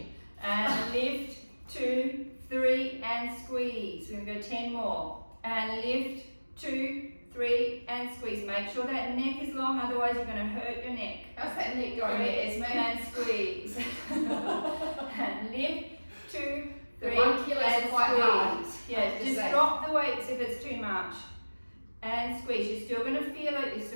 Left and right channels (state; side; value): inverted; both; correlation -1.00